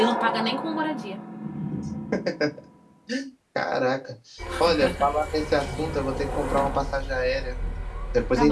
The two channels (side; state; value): both; identical; correlation 1.00